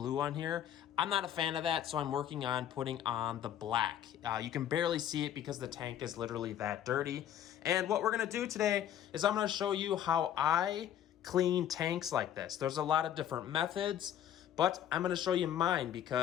on here. I'm not a fan of that, so I'm working on putting on the black. You can barely see it because the tank is literally that dirty. And what we're gonna do today is I'm gonna show you how I clean tanks like this. There's a lot of different methods, but I'm gonna show you mine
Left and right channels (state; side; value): quieter; right; 10.6 dB